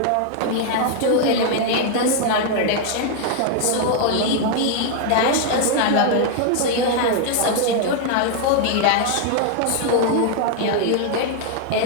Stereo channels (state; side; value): different; both; correlation 0.00